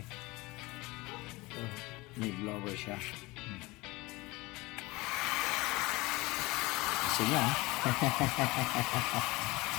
May blower siya. Kasi nga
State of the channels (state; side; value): quieter; right; 22.2 dB